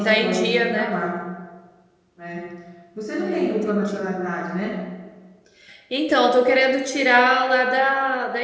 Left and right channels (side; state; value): both; identical; correlation 1.00